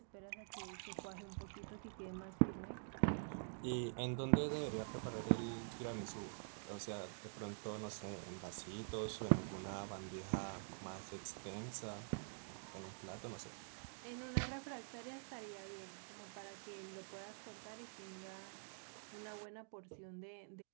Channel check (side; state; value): left; silent; digital silence